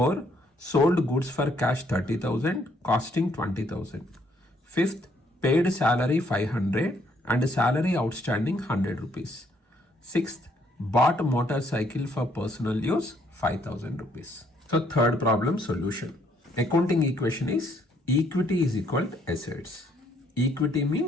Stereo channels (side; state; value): both; normal; correlation 0.68